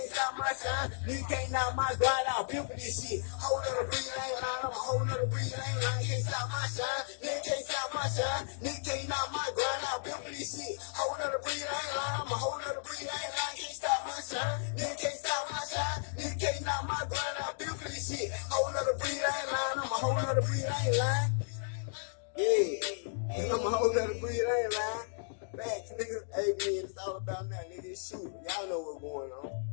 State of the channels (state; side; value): silent; right; digital silence